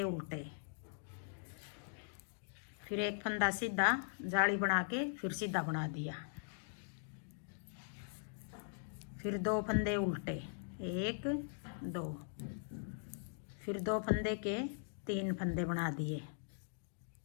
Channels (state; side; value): silent; right; digital silence